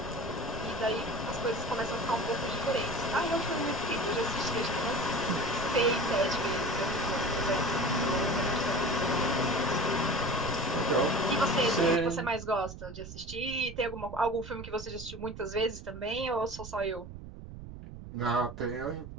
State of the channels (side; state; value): right; noise; rumble, 12 dB below the sound